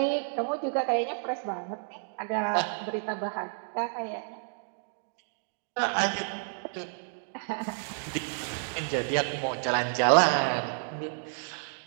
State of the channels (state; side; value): silent; left; digital silence